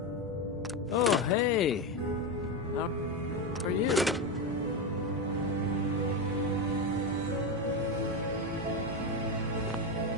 Oh, hey. How are you?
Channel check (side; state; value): both; normal; correlation 0.13